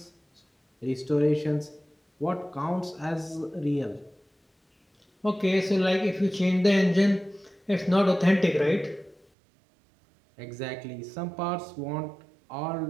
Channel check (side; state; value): left; drops out; at 9.2 s